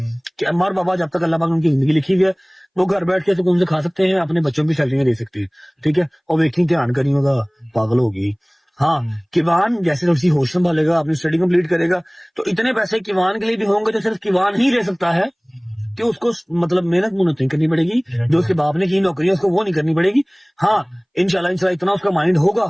कि अम्मा और बाबा जब तक अल्लाह पाक उनकी जिंदगी लिखी हुई है वो घर बैठ के सुकून से खा सकते हैं, अपने बच्चों की सैलरी दे सकते हैं, ठीक है। और वेकिंग ध्यान करी होगा, पागल होगी। हाँ, किवान जैसे थोड़ी सी होश संभालेगा, अपनी स्टडी कंप्लीट करेगा, तो इतने पैसे किवान के लिए भी होंगे तो सिर्फ किवान ही ले सकता है, कि उसको मतलब मेहनत मुहनत नहीं करनी पड़ेगी, जो उसके बाप ने की नौकरी है उसको वो नहीं करनी पड़ेगी। हाँ, इंशाल्लाह इतना उसका माइंड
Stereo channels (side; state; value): both; identical; correlation 1.00